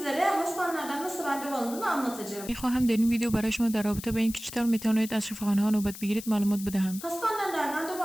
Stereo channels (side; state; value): left; noise; hiss, 13 dB below the sound